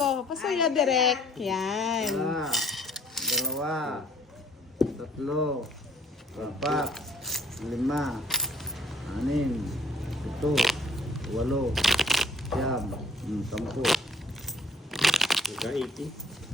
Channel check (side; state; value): both; normal; correlation 0.58